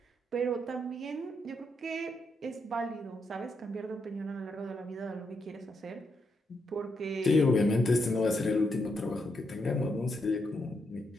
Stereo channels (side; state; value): both; normal; correlation 0.80